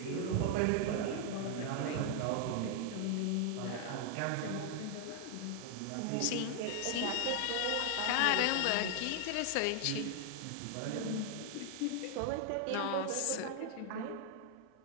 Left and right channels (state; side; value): different; both; correlation 0.00